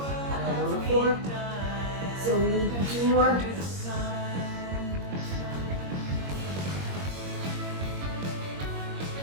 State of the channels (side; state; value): left; late; 21 ms